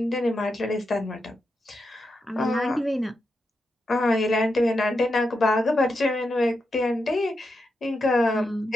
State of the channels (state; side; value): normal; both; correlation 0.86